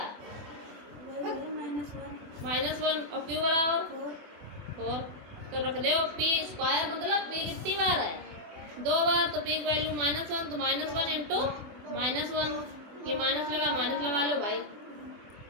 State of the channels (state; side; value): late; left; 24 ms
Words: -1 और q बराबर 4। तो रख दो पी स्क्वायर मतलब पी कितनी बार है? 2 बार। तो पी की वैल्यू -1 तो -1 इंटू -1। ये माइनस लगा लो भाई।